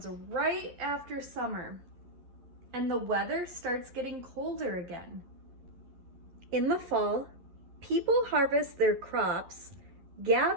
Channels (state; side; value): late; left; 11 ms